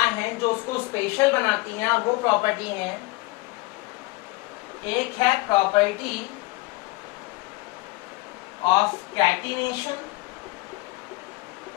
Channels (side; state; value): right; quieter; 22.6 dB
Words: हैं जो उसको स्पेशल बनाती हैं, और वो प्रॉपर्टी है, एक है प्रॉपर्टी ऑफ कैटिनेशन